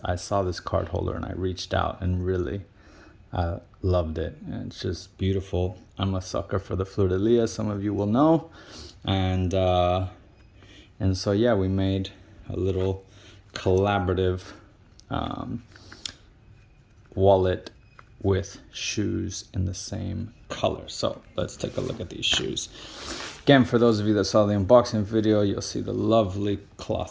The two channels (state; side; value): identical; both; correlation 1.00